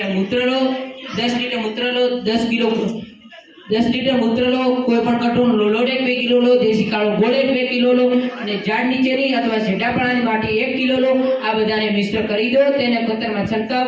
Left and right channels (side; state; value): both; identical; correlation 1.00